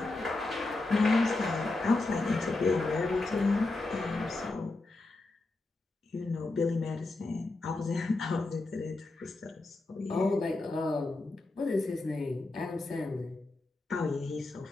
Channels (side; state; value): right; quieter; 3.1 dB